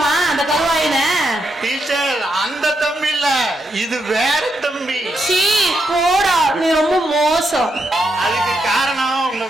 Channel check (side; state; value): both; normal; correlation 0.81